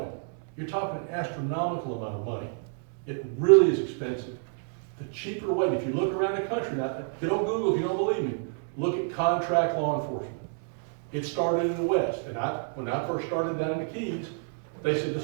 You're talking an astronomical amount of money. It really is expensive. The cheaper way, if you look around the country now, get on Google if you don't believe me, look at contract law enforcement. It started in the West, and when I first started down in the Keys, they said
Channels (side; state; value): left; silent; 59 dB below the other